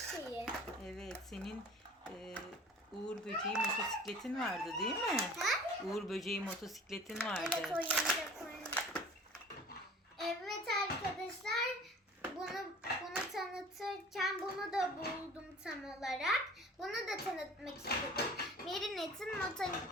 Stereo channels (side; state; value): both; normal; correlation 0.45